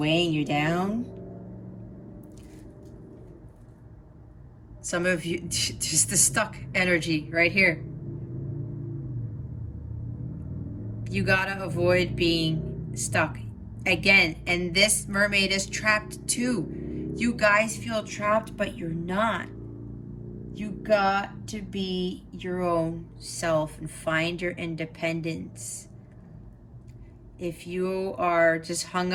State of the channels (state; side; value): identical; both; correlation 1.00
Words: you down. Some of you, just the stuck energy right here. You gotta avoid being stuck. Again, and this mermaid is trapped too. You guys feel trapped, but you're not. You got to be your own self and find your independence. If you are just hung